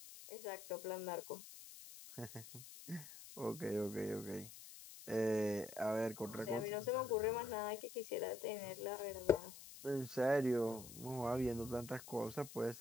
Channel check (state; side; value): noise; left; hiss, 14 dB below the sound